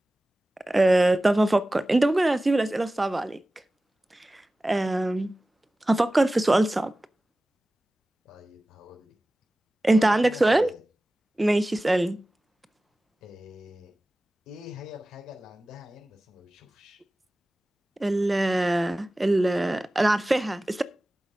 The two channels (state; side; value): normal; both; correlation 0.97